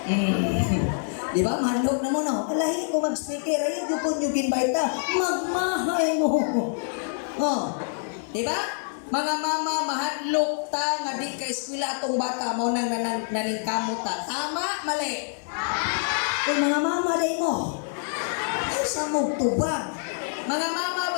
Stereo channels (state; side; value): silent; right; digital silence